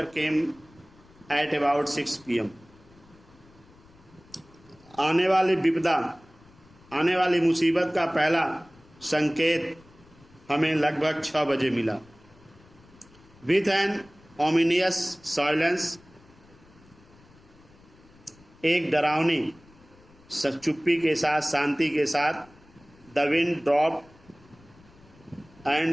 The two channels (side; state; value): left; noise; rumble, 27 dB below the sound